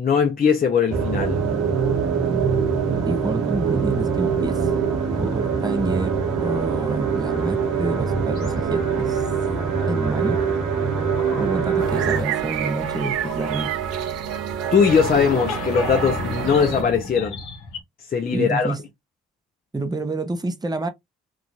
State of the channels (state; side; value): normal; both; correlation 0.46